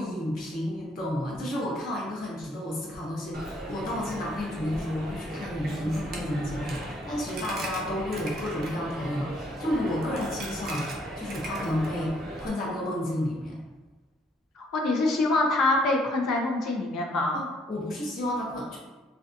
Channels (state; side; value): normal; both; correlation 0.67